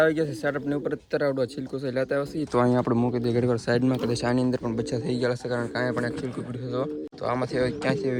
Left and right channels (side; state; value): both; identical; correlation 1.00